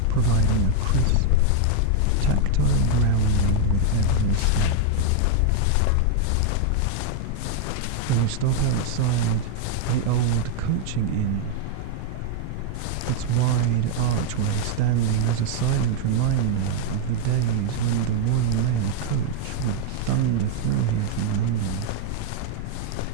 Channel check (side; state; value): both; different; correlation 0.00